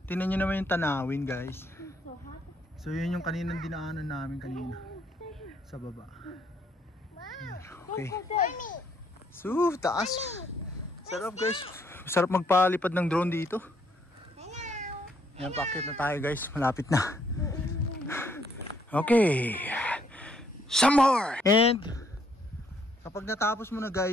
tingnan nyo naman yung tanawin guys. So yun yung kaninang dinaanan namin kanina sa baba. Okay. So taas. Sarap guys. Sarap magpalipad ng drone dito. Yan, paakyat na tayo guys. Malapit na. Okay. Some more. And kapag natapos mo na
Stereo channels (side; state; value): both; normal; correlation 0.69